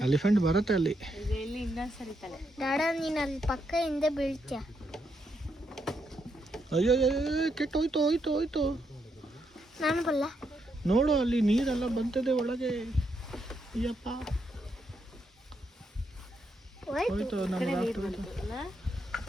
ಎಲಿಫೆಂಟ್ ಬರುತ್ತೆ ಅಲ್ಲಿ. ದಾಡ ನೀನು ಅಲ್ಲಿ ಪಕ್ಕ ಹಿಂದೆ ಬೀಳ್ತೀಯ. ಅಯ್ಯೋ ಕೆಟ್ಟೋಯ್ತು. ನಾನು ಬಲ್ಲ. ನೋಡು ಅಲ್ಲಿ ನೀರೆಲ್ಲ ಬಂತದೆ ಒಳಗೆ. ಅಯ್ಯಪ್ಪ ಹೋಯ್ತು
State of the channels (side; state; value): both; normal; correlation 0.79